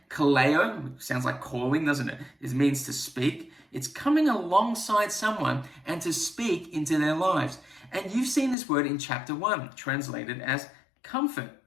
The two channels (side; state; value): right; drops out; at 8.6 s